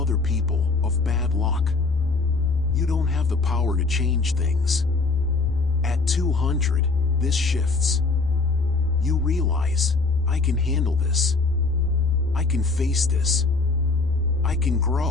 people, of bad luck. You don't have the power to change things. At 200, this shifts. You realize, "I can handle this. I can face this. I can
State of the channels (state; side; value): quieter; right; 3.9 dB